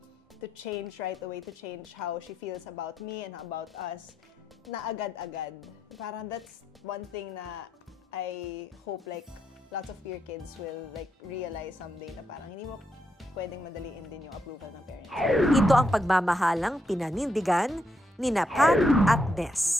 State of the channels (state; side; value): normal; both; correlation 0.80